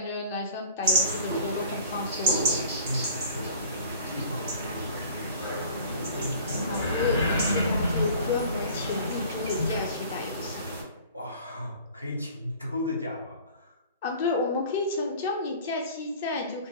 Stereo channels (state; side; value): inverted; both; correlation -0.46